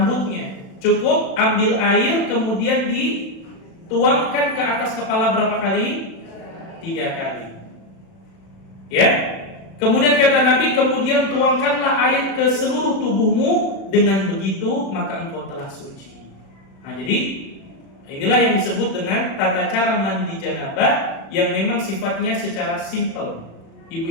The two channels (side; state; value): right; late; 36 ms